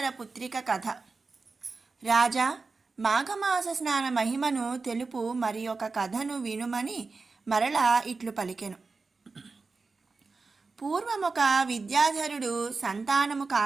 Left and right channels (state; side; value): quieter; left; 4.2 dB